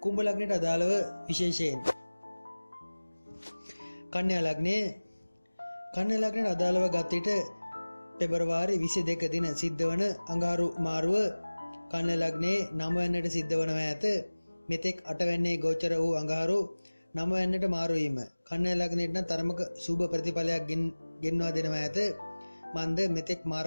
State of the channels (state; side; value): inverted; both; correlation -1.00